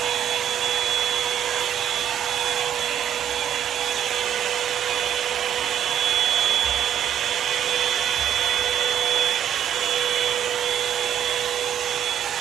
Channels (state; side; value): quieter; left; 10.0 dB